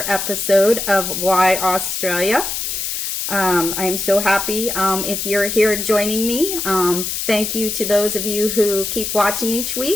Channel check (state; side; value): noise; left; hiss, 3 dB below the sound